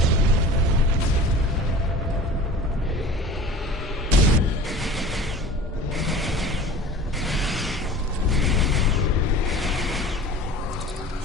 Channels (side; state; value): both; normal; correlation 0.41